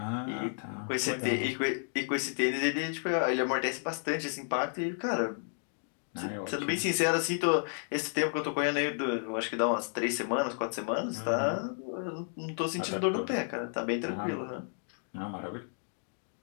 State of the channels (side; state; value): right; silent; 56 dB below the other